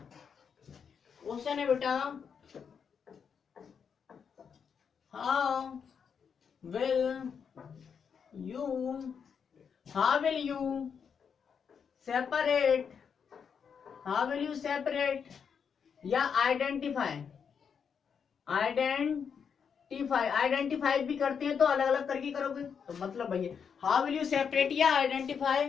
क्वेश्चन है बेटा, how will you separate या आइडेंटिफाई आइडेंटिफाई भी करते हैं तो अलग अलग करके करोगे, तो मतलब भैया हाउ विल यू सेपरेट या identify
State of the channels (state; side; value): quieter; right; 6.8 dB